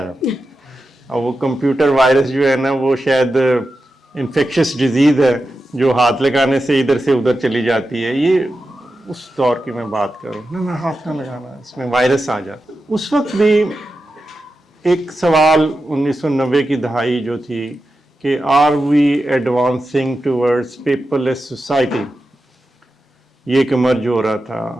ہے. اور وہ کمپیوٹر وائرس جو ہے نا وہ شاید انفیکشس ڈیزیز ہے جو ہاتھ لگانے سے ادھر سے ادھر چلی جاتی ہے. یہ اس دور کی میں بات کروں, نہ ہاتھ نہ لگانا, اس میں وائرس آ جاتا. اس وقت بھی ایک سوال 1990 کی دہائی جو تھی کہ are we advancing towards paperless society, یہ ایک مرج ہو رہا تھا.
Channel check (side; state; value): both; normal; correlation 0.91